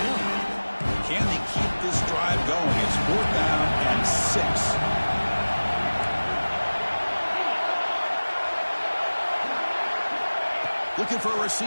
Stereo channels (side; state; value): both; inverted; correlation -1.00